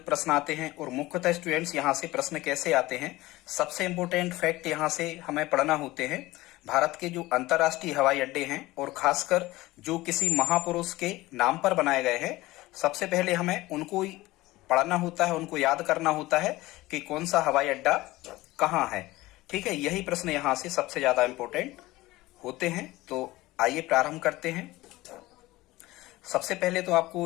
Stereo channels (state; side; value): quieter; right; 18.8 dB